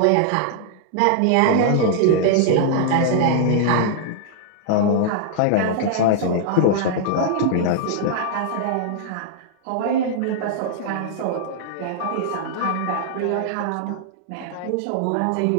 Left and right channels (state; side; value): different; both; correlation -0.01